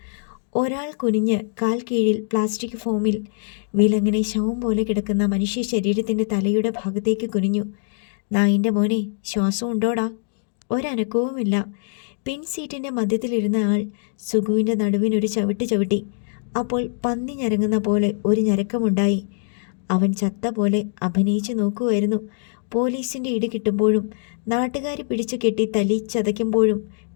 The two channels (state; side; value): silent; right; digital silence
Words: ഒരാൾ കുനിഞ്ഞ് കാൽ കീഴിൽ പ്ലാസ്റ്റിക് ഫോമിൽ വിലങ്ങനെ ശവം പോലെ കിടക്കുന്ന മനുഷ്യ ശരീരത്തിൻ്റെ തലയുടെ ഭാഗത്തേക്ക് കുനിഞ്ഞു. നായിൻ്റെ മോനെ, ശ്വാസം ഉണ്ടോടാ? ഒരനക്കവുമില്ല. പിൻ സീറ്റിൻ്റെ മധ്യത്തിലിരുന്ന ആൾ സുഖുവിൻ്റെ നടുവിനൊരു ചവിട്ട് ചവിട്ടി. അപ്പോൾ പന്നി ഞരങ്ങുന്ന പോലെ ഒരു ഞരക്കമുണ്ടായി. അവൻ ചത്ത പോലെ അഭിനയിച്ചു നോക്കുമായിരുന്നു. പോലീസിൻ്റെ ഇടി കിട്ടുമ്പോഴും നാട്ടുകാർ പിടിച്ചു കെട്ടി തല്ലി ചതയ്ക്കുമ്പോഴും